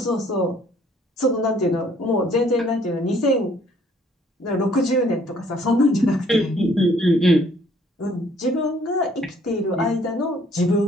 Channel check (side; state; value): both; normal; correlation 0.61